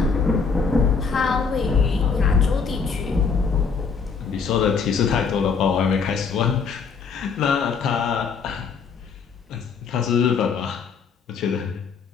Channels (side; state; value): right; quieter; 5.5 dB